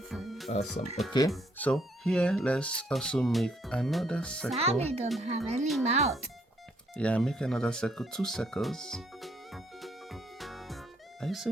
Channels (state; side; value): normal; both; correlation 0.69